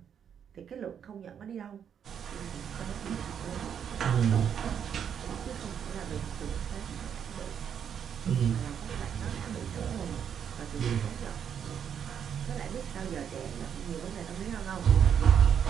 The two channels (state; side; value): quieter; left; 8.2 dB